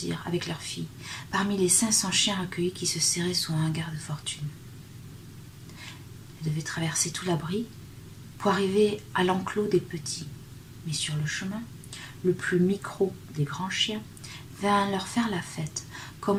avec leur fille parmi les 500 chiens recueillis qui se serraient sous un hangar de fortune. Elle devait traverser tout l'abri pour arriver à l'enclos des petits, mais sur le chemin, le plus micro des grands chiens vint leur faire la fête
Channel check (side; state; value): both; identical; correlation 1.00